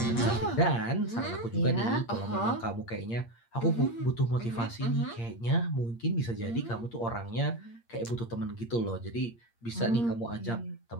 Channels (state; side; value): late; right; 8.6 ms